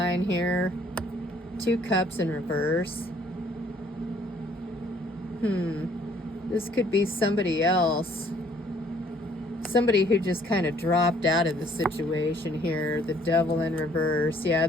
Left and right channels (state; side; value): normal; both; correlation 0.61